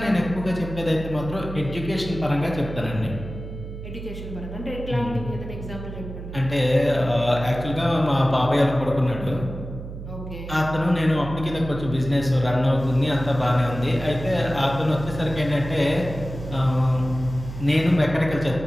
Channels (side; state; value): right; noise; hum, 10 dB below the sound